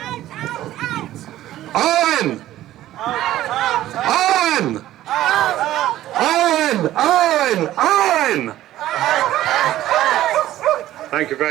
Owen! Owen! Owen! Owen! Owen! Thank you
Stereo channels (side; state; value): left; quieter; 14.0 dB